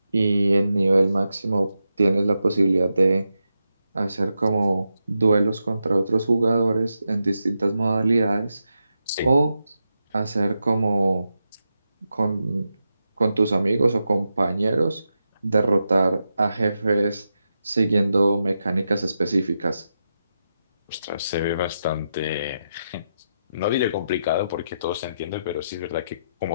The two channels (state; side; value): inverted; both; correlation -0.87